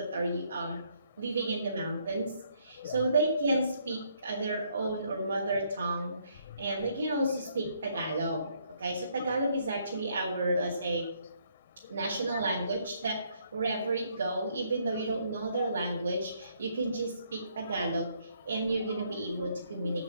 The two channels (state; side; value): inverted; both; correlation -0.70